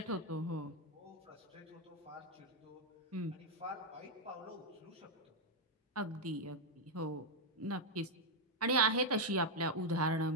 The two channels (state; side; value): normal; both; correlation 0.00